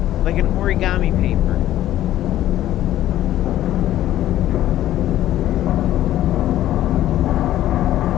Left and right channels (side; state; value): right; quieter; 13.2 dB